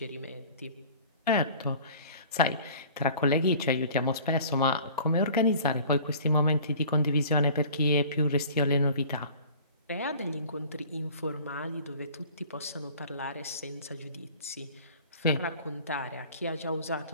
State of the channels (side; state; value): both; inverted; correlation -0.46